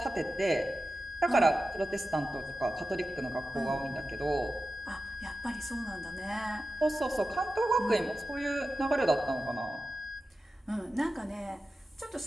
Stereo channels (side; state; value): both; normal; correlation 0.93